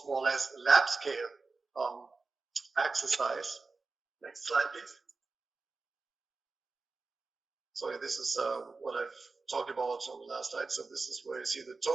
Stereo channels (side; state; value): left; quieter; 4.0 dB